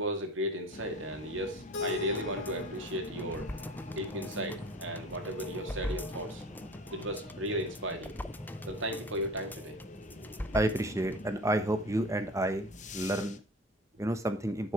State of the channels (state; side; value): normal; both; correlation 0.39